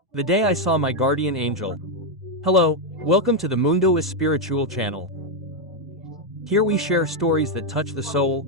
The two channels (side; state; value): both; normal; correlation 0.02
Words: The day I saw my guardian angel. Hello, welcome to the Mundo Espiritual channel. Here we share stories that touch the